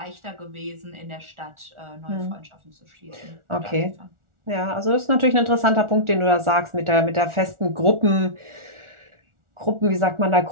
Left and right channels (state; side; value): late; left; 1.4 ms